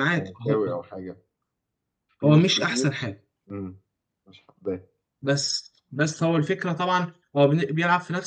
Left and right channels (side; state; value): both; identical; correlation 1.00